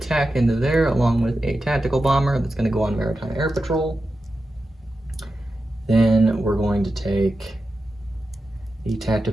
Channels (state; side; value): normal; both; correlation 0.91